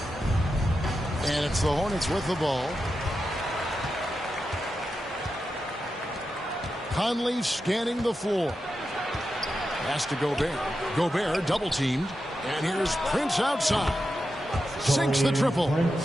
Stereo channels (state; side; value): normal; both; correlation 0.89